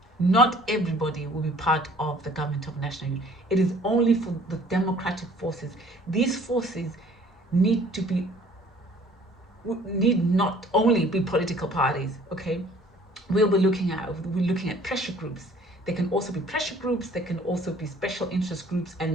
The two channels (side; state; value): both; normal; correlation 0.54